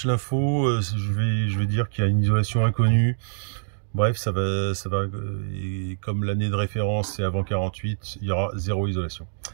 l'info, je vais dire qu'il y a une isolation inconnue. Bref, et comme l'année de référence c'est avant 48, il y aura zéro isolation.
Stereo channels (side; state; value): left; silent; digital silence